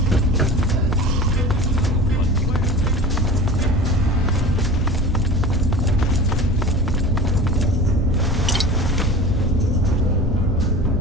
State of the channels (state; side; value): normal; both; correlation 0.37